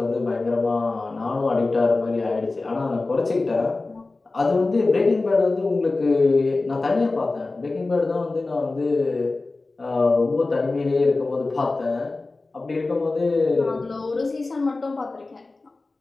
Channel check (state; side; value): quieter; right; 3.4 dB